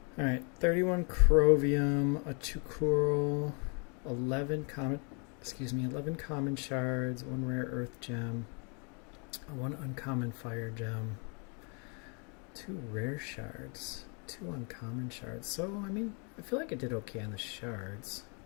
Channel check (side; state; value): right; quieter; 36.0 dB